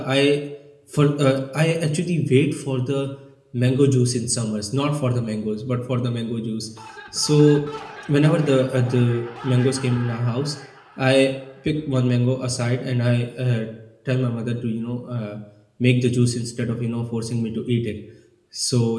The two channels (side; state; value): both; identical; correlation 1.00